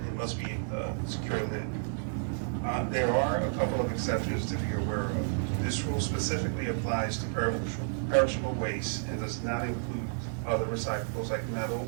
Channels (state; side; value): silent; left; digital silence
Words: must be a secure lid. There are a couple of exceptions to be aware of. This rule specifically applies to perishable waste and does not include other recyclables like metal,